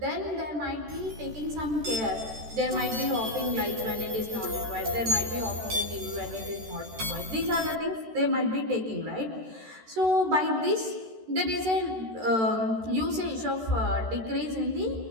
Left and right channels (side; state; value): left; late; 13 ms